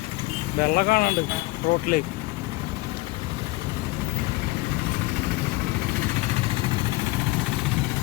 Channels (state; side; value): quieter; right; 21.6 dB